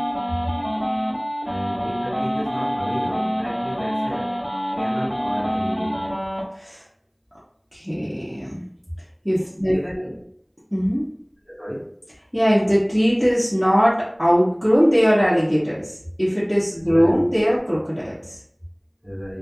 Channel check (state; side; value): identical; both; correlation 1.00